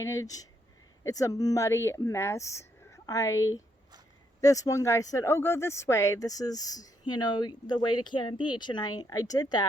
It's a muddy mess. This one guy said, oh, go this way. This is, the way to Cannon Beach. And I did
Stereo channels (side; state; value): both; normal; correlation 0.76